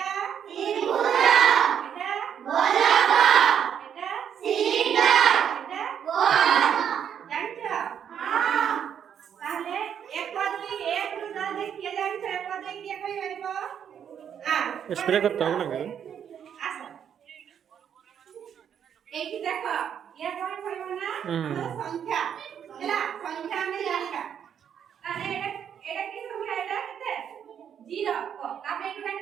ত্রিভুজ এটা গোলক এটা সিলিন্ডার এটা গোল জানছো হ্যাঁ তাহলে এক পদ দুই এক দুই তাহলে কে জানছো এক পদ দুই কে কই পারিব স্প্রে করতে হবে নাকি আসো এইটি দেখো ইয়া কোন কইব না আমাদের সংখ্যা ହେଲା সংখ্যা ଆମେ ଜାଣିବା তাহলে এটা কি সংখ্যা এটা কেতে 0 তাহলে এটা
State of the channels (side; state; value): left; quieter; 8.6 dB